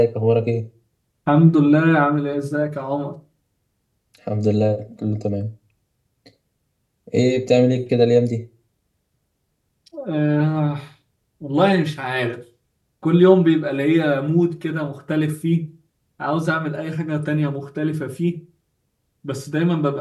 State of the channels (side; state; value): both; identical; correlation 1.00